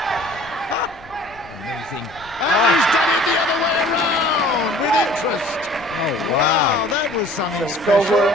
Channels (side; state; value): left; noise; rumble, 23 dB below the sound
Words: Amazing. And he's done it the other way around with interest. Oh, Wow, that was something It's special. over.